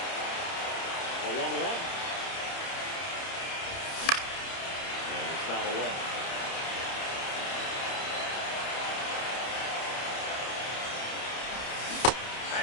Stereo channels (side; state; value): right; late; 30 ms